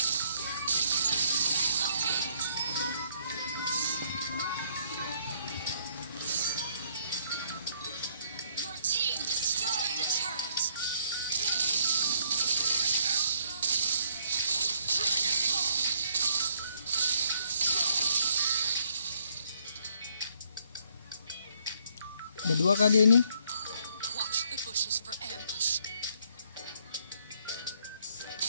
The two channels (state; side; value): inverted; both; correlation -0.68